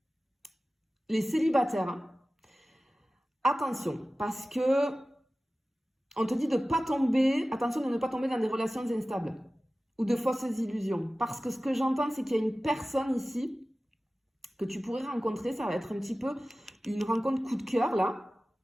les célibataires, attention, parce que on te dit de pas tomber, attention de ne pas tomber dans des relations instables ou de fausses illusions. Parce que ce que j'entends, c'est qu'il y a une personne ici que tu pourrais rencontrer, ça va être un petit peu une rencontre coup de cœur là.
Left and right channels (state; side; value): normal; both; correlation 0.96